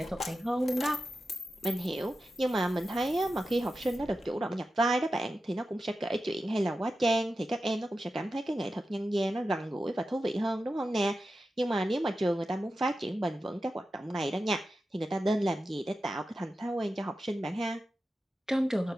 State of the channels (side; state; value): both; normal; correlation 0.92